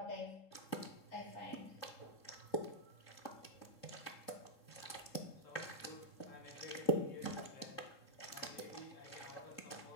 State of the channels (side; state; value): right; late; 3.7 ms